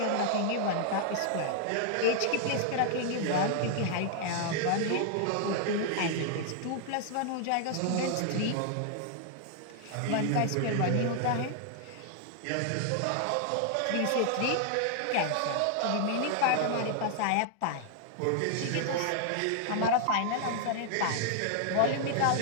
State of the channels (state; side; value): different; both; correlation 0.00